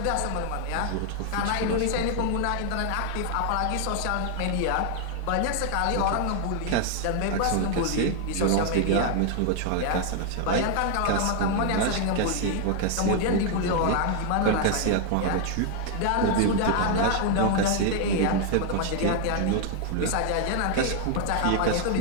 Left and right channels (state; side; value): different; both; correlation 0.00